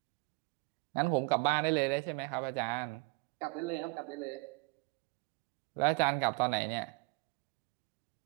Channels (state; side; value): quieter; left; 28.3 dB